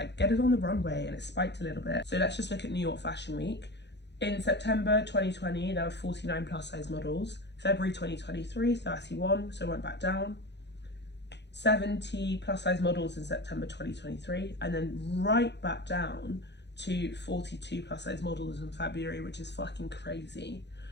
get it on the runway, and it spiked a little bit. So let's just look at New York Fashion Week. In September 2020, there were 49 plus size models. February 2023, 31, so it went back down. 70 plus size models in September 2023, and then right back down to 42 plus size models in February, which is fucking crazy.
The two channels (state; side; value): late; right; 0.50 ms